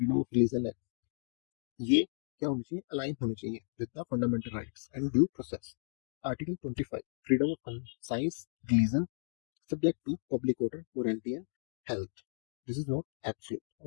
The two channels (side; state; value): right; silent; digital silence